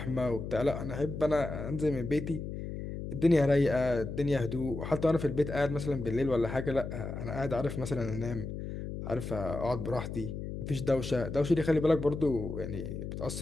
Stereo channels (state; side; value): noise; left; hum, 7 dB below the sound